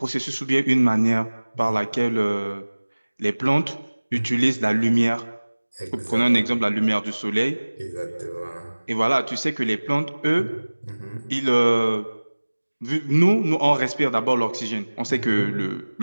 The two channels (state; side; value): inverted; both; correlation -1.00